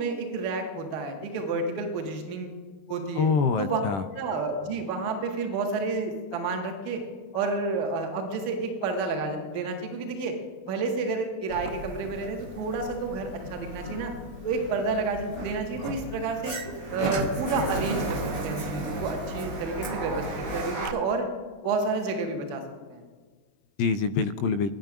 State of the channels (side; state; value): right; late; 20 ms